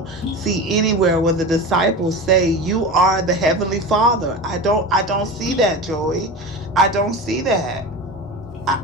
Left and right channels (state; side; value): normal; both; correlation 0.28